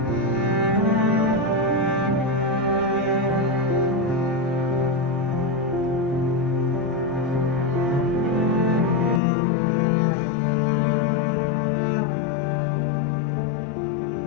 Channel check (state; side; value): drops out; right; at 9.2 s